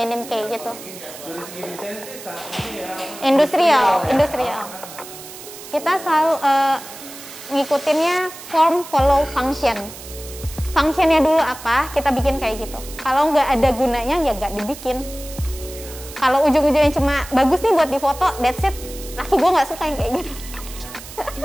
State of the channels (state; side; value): noise; right; hiss, 14 dB below the sound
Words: kayak gitu. Dari segi desain sih saat ini ya. Industrial. Kita selalu ngikutinnya form follow function. Functionnya dulu apa, kita bikin kayak gitu. Kalau nggak ada gunanya ya nggak dibikin. Kalau ujung-ujungnya cuma bagus nih buat difoto, that's it. Laki gue nggak suka yang kayak gitu.